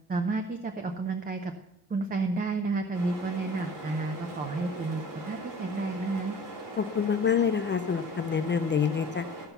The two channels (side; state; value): both; normal; correlation 0.46